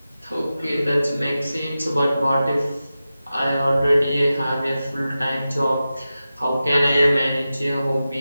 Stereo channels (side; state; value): both; inverted; correlation -0.93